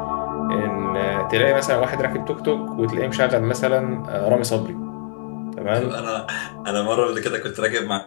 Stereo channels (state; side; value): silent; right; 64 dB below the other